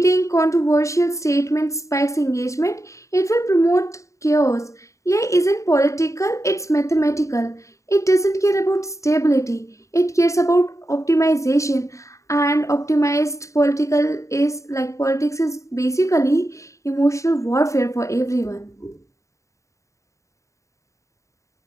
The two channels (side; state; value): right; late; 0.15 ms